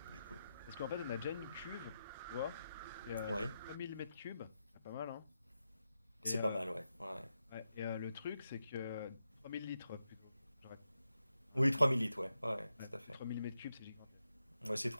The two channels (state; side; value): inverted; both; correlation -0.87